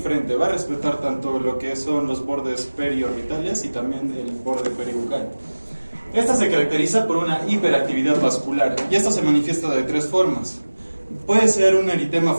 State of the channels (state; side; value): inverted; both; correlation -1.00